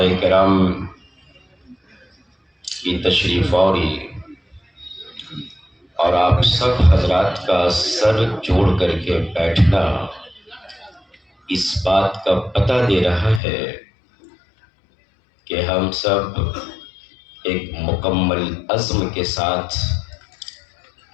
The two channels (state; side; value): drops out; right; at 13.4 s